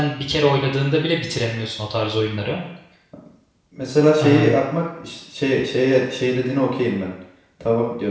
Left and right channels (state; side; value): identical; both; correlation 1.00